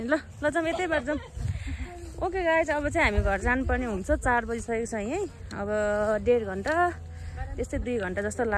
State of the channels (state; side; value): identical; both; correlation 1.00